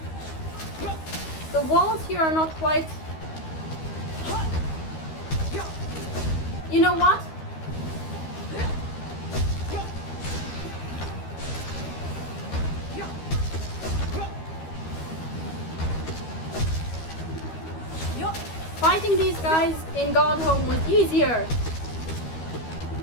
The walls here are not quite... You know what? Fighting these guys in Godhome was easier.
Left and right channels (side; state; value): right; late; 13 ms